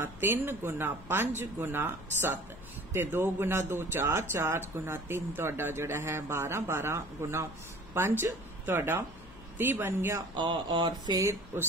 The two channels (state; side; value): noise; left; hum, 20 dB below the sound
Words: 3 गुना 5 गुना 7 ते 2 गुना 2 4 4 गुना 3 तुहाडा जिहड़ा है 12 12 गुना 5 तुहाडा 30 बन गया और फिर